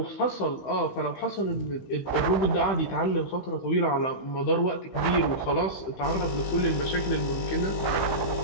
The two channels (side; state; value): right; late; 15 ms